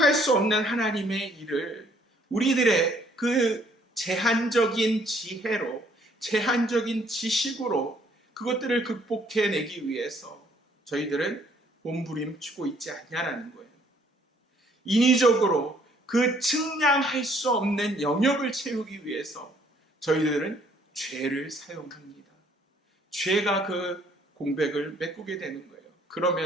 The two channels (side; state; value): both; normal; correlation 0.63